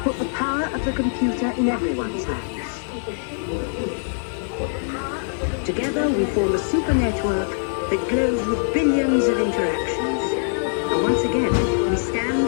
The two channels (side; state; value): right; silent; digital silence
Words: put the power of the computer in everyone's hands. Together we form a super network that glows with billions of interactions. And once again, we